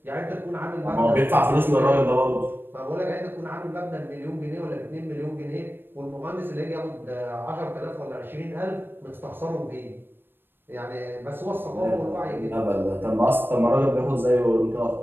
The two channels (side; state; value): left; late; 0.098 ms